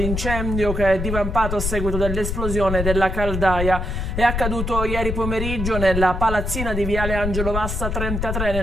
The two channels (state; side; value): noise; left; rumble, 3 dB below the sound